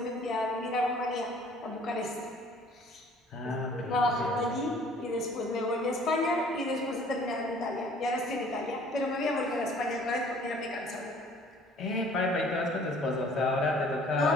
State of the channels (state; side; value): normal; both; correlation 0.55